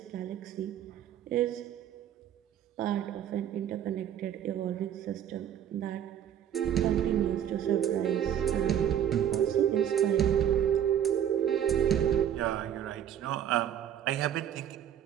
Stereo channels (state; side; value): quieter; left; 10.0 dB